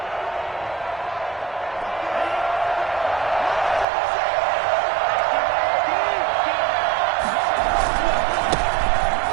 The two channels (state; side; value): drops out; left; at 3.9 s